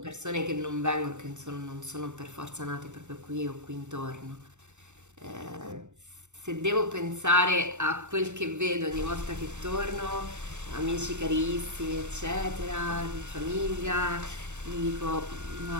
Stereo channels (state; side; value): late; left; 0.84 ms